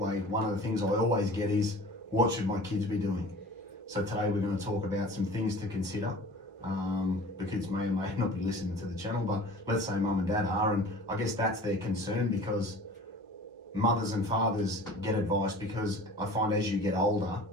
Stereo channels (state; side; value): normal; both; correlation 0.42